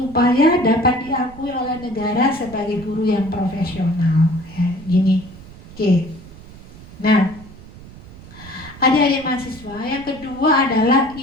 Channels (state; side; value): noise; right; rumble, 18 dB below the sound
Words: dapat diakui oleh negara sebagai guru yang profesional ya, gini. Oke. Nah, adik-adik mahasiswa, yang kedua adalah